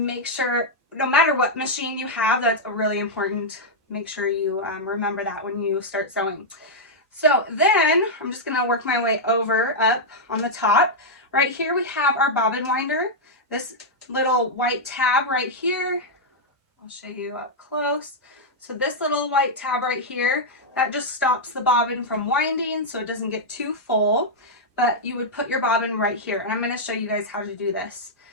sure, no matter what machine you have, that's really important. Make sure you remember that when you start sewing. So then I'm just going to work my way over up on the top. Right here we have our bobbin winder. This little white tab right here. I'll show you up close. So this little white tab right here, that just stops the bobbin from winding so it doesn't get too full. But you would put your bobbin right here. And I'm going to show you guys how to do this.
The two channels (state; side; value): normal; both; correlation -0.05